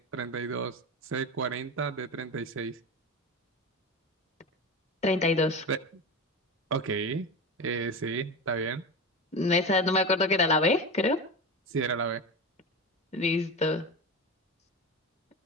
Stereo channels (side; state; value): both; normal; correlation 0.24